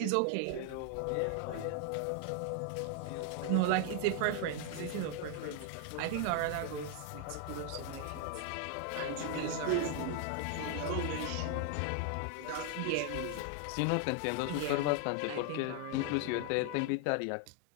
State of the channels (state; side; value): different; both; correlation 0.00